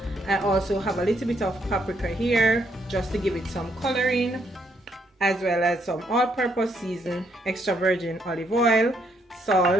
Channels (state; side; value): normal; both; correlation 0.73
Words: I also have a little bit of paprika here just to give it some coloring, as well as some all-purpose season, extra virgin olive oil,